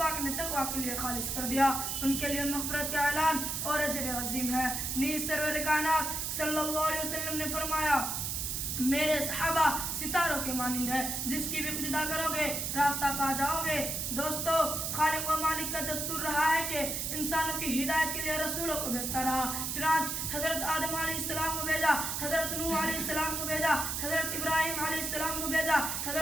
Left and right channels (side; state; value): right; noise; hiss, 2 dB below the sound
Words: نے تقوی کے لیے خالص کر دیا، ان کے لیے مغفرت کا اعلان اور اجر عظیم ہے. نیز سرور کائنات صلی اللہ علیہ وسلم نے فرمایا: میرے صحابہ ستاروں کے مانند ہے، جس کی بھی اقتدا کرو گے راستہ پا جاؤ گے. دوستو، خالق و مالک کا دستور رہا ہے کہ انسانوں کی ہدایت کے لیے رسولوں کو بھیجتا رہا. چنانچہ حضرت آدم علیہ السلام کو بھیجا، حضرت نوح علیہ السلام کو بھیجا، حضرت ابراہیم علیہ السلام کو بھیجا،